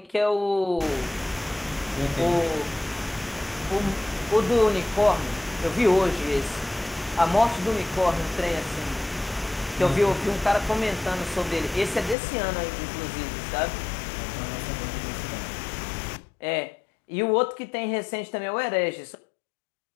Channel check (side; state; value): right; drops out; at 12.2 s